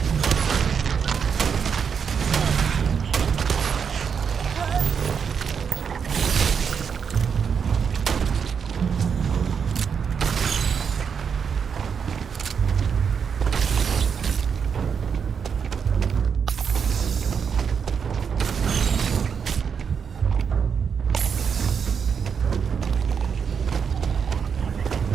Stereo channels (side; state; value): left; quieter; 6.7 dB